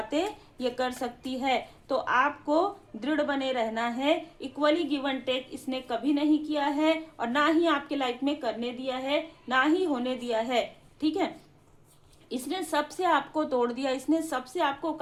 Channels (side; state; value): both; identical; correlation 1.00